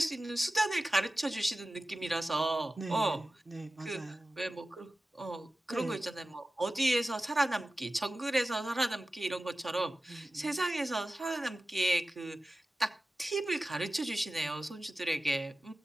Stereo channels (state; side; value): normal; both; correlation 0.95